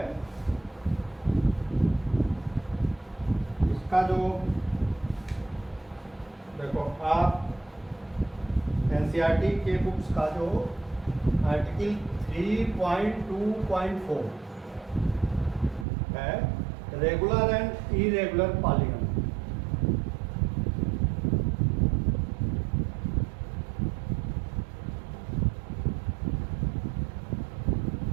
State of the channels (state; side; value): drops out; left; at 15.9 s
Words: इसका जो देखो आप एनसीईआरटी के बुक्स का जो आर्टिकल 3.2.4 है, रेगुलर एंड इरेगुलर पॉलीगन।